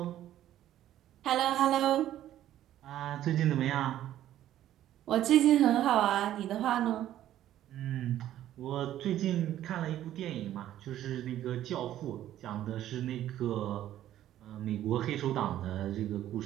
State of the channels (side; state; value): left; quieter; 12.5 dB